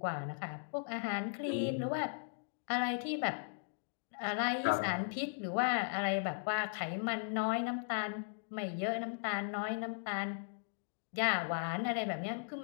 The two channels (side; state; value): right; silent; digital silence